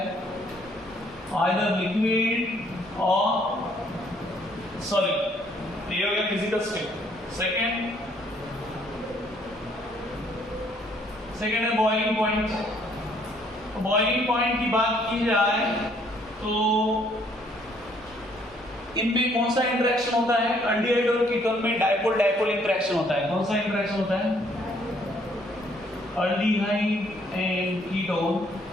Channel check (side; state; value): both; normal; correlation 0.65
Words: आइदर लिक्विड और सॉलिड। ये हो गया फिजिकल स्टेट। सेकेंड है बॉइलिंग पॉइंट। बॉइलिंग पॉइंट की बात की जाए तो इनमें कौन सा इंटरेक्शन होता है? अल्डिहाइड और कीटोन में डाइपोल डाइपोल इंटरेक्शन होता है। कौन सा इंटरेक्शन होता है? aldehyde and ketone